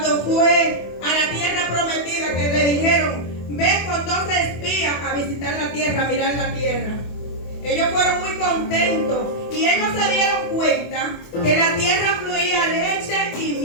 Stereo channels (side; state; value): right; late; 24 ms